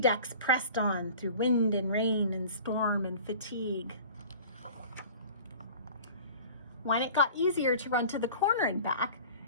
pressed on through wind and rain and storm and fatigue. When it got easier to run to the corner and back,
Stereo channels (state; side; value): inverted; both; correlation -0.42